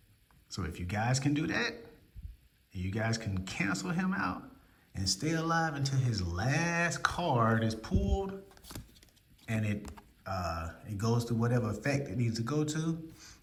So if you guys can do that, you guys can cancel him out and stay alive until his last card is pulled and it goes to whatever effect it needs to go to,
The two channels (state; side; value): identical; both; correlation 1.00